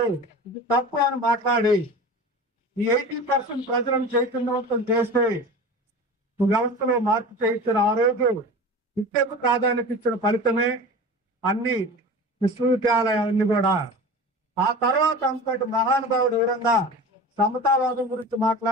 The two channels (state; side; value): normal; both; correlation 0.34